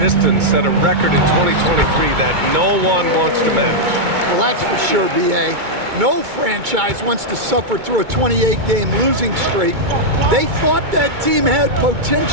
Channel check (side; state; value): left; late; 2.2 ms